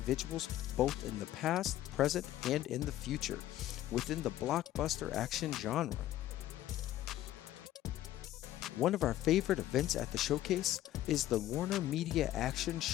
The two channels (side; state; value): right; quieter; 13.7 dB